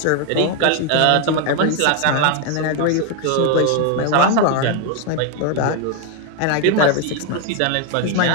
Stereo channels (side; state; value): both; different; correlation 0.01